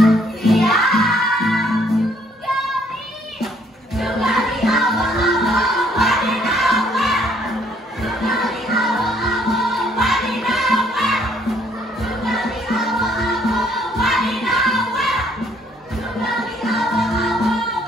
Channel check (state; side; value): normal; both; correlation 0.65